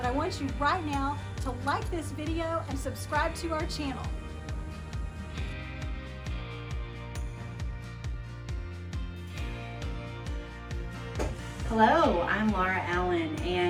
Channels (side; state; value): both; identical; correlation 1.00